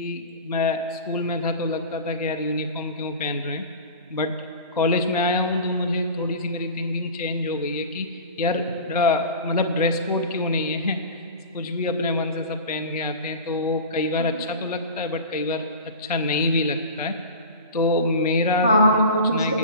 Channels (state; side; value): inverted; both; correlation -0.34